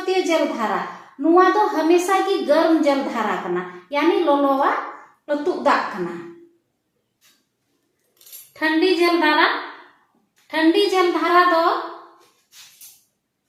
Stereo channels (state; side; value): identical; both; correlation 1.00